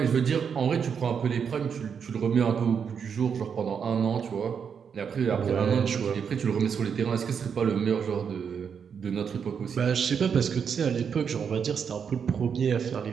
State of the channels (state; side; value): quieter; left; 6.9 dB